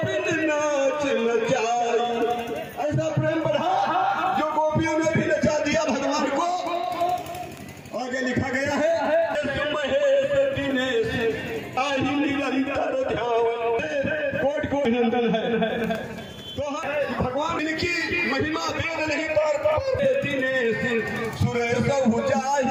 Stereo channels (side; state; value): both; identical; correlation 1.00